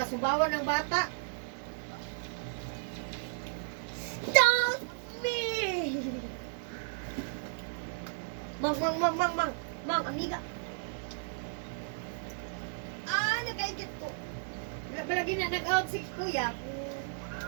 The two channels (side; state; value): left; silent; digital silence